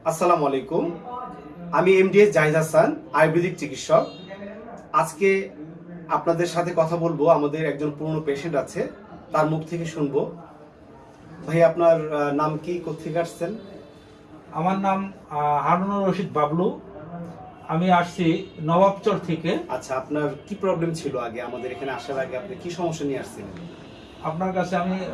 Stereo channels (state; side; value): identical; both; correlation 1.00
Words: আসসালামু আলাইকুম। আমি এমডিএস জাহিদ হাসান, আয়ুর্বেদিক চিকিৎসক। আজকে আপনাদের সাথে কথা বলবো। আমাদের একজন পুরনো পেশেন্ট আছে, তার মুখ থেকে শুনবো। ভাই, আপনার নাম কি, কোথেকে আসছেন? আমার নাম হারুনুর রশিদ বাবলু। আমি আসছি নবাবচর থেকে। আচ্ছা, আপনার কি প্রবলেম ছিল আগে? আমাদের এখানে আসার আগে আপনি কি সমস্যা নিয়ে আসছিলেন? আপনার কাছে আমি